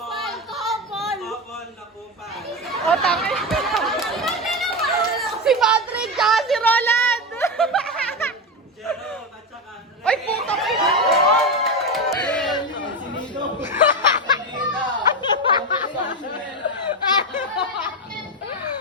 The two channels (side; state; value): both; normal; correlation 0.15